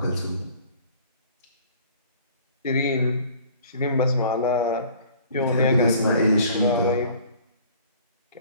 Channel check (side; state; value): both; inverted; correlation -0.51